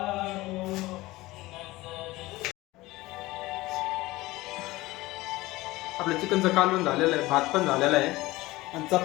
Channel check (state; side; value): quieter; right; 19.3 dB